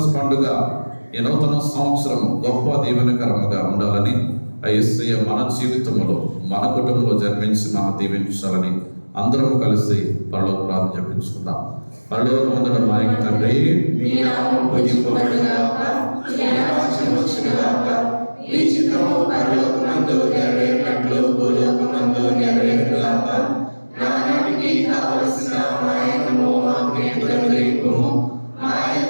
పండుగ, ఈ నూతన సంవత్సరం గొప్ప దీవెనకరముగా ఉండాలని ఆ యేసయ్య మన జీవితంలో మన కుటుంబంలో జన్మించి మనం దీవించాలని అందరం కలిసి పరలోక ప్రార్థన జపించుకుందాం. పరలోకమందున మా యొక్క తండ్రి, మీ నామం పూజింపబడుగాక, మీ రాజ్యం వచ్చుగాక, మీ చిత్తము పరలోకమందు నెరవేరినట్లు భూలోకమందు నెరవేరుగాక. నానాటికి కావలసిన మా అన్నము మాకు నేడు అనుగ్రహింపుము. మా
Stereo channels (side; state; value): both; inverted; correlation -1.00